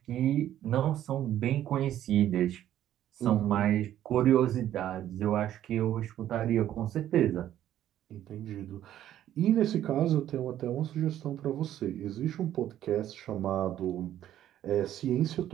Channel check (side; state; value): left; quieter; 11.9 dB